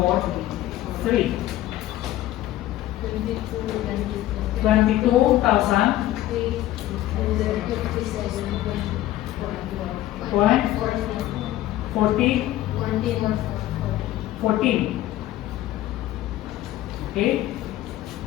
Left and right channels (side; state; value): right; quieter; 14.6 dB